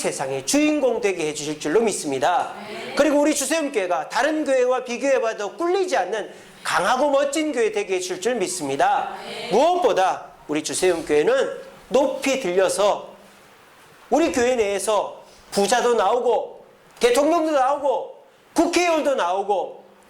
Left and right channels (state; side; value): identical; both; correlation 1.00